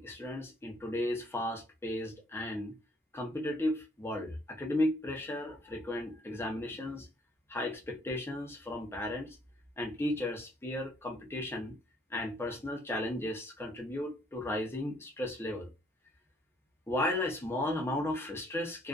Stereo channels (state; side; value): normal; both; correlation 0.64